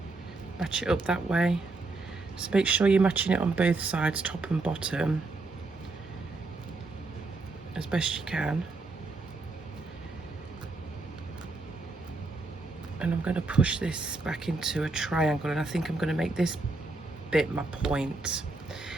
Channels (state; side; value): quieter; left; 3.3 dB